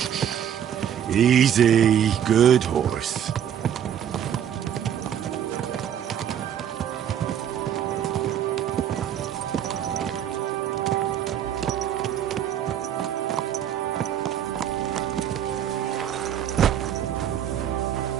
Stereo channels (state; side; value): quieter; left; 9.6 dB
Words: Easy, good horse.